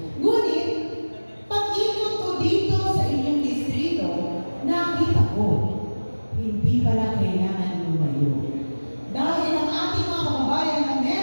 Ngunit, pag-ikot ko dito sa inyong distrito, nakita ko, hindi pala kailangan lumayo. Dahil ang ating mga kababayan na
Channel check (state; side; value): inverted; both; correlation -1.00